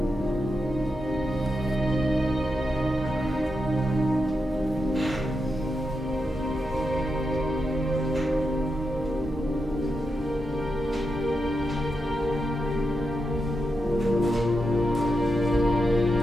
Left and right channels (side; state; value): both; normal; correlation 0.87